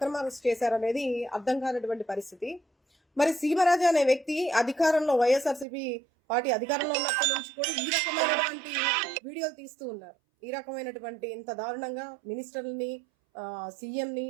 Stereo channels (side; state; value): left; drops out; at 5.7 s